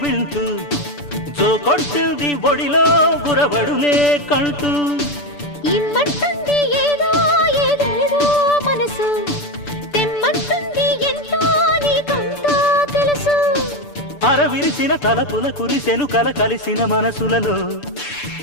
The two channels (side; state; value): right; late; 6.9 ms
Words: వింటూ జో కొట్టింది ఒడిలో గురబడులే కంటూ ఇమ్మంటుంది ఏదో ఏదేదో మనసు తెమ్మంటుంది ఎంతో నీకంతా తెలుసు అరవిరిసిన తలపుల కురిసెను కల కలిసిన మనసులలో